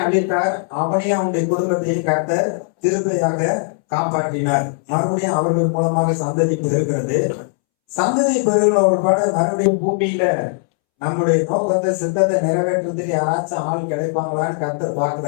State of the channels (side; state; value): right; silent; 67 dB below the other